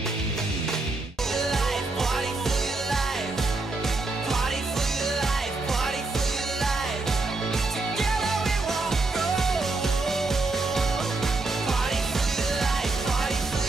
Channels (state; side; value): quieter; left; 3.4 dB